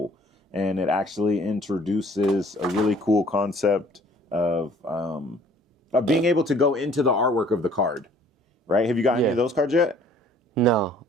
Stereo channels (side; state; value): both; normal; correlation 0.55